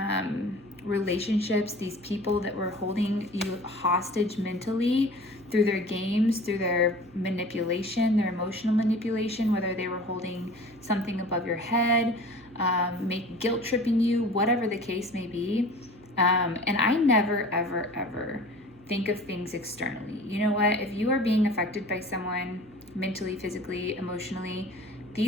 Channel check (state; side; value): noise; right; hum, 26 dB below the sound